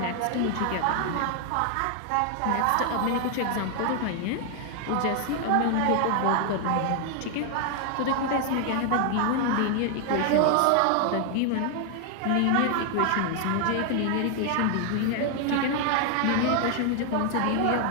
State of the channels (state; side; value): different; both; correlation 0.00